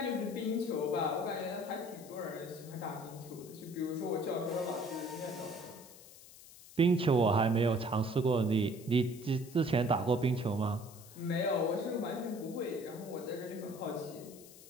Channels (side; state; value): left; noise; hiss, 19 dB below the sound